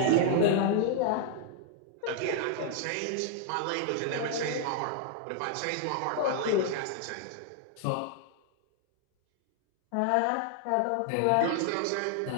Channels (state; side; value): different; both; correlation 0.00